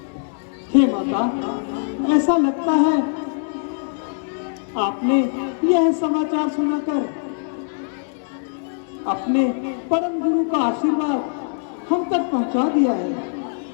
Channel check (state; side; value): silent; right; digital silence